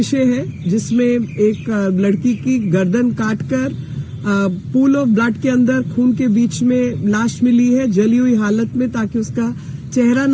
है जिसमें एक लड़की की गर्दन काटकर पूल ऑफ ब्लड के अंदर खून के बीच में लाश मिली है जली हुई हालत में, ताकि उसका चेहरा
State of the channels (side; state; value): both; identical; correlation 1.00